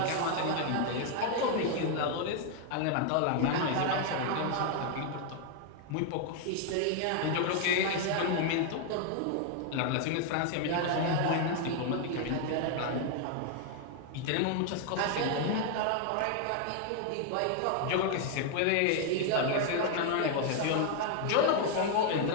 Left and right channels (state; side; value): different; both; correlation 0.00